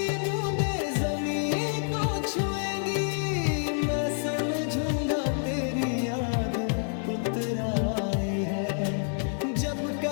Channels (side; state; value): right; silent; 59 dB below the other